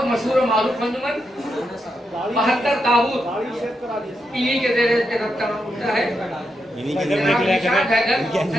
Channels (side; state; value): both; normal; correlation 0.84